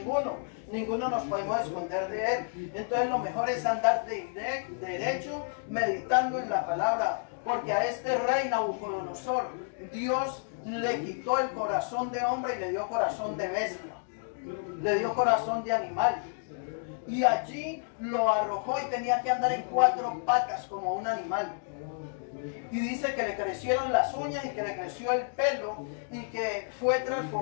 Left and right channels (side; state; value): right; silent; digital silence